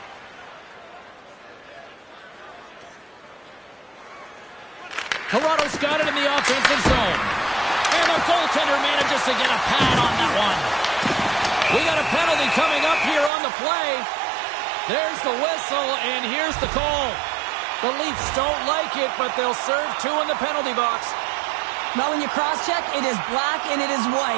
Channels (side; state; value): left; drops out; at 13.3 s